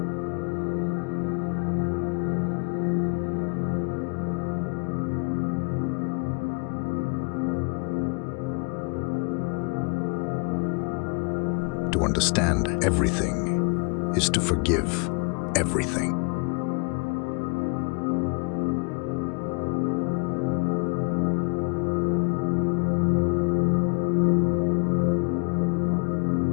To understand everything is to forgive everything.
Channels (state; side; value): quieter; right; 34.0 dB